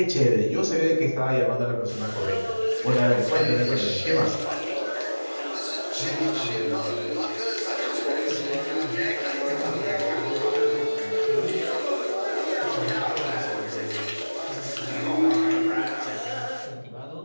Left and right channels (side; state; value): both; inverted; correlation -1.00